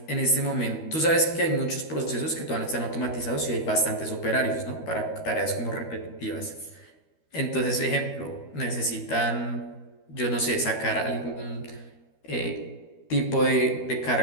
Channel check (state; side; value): late; right; 13 ms